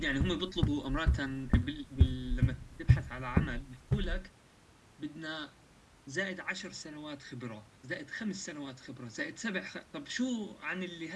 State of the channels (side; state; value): both; identical; correlation 1.00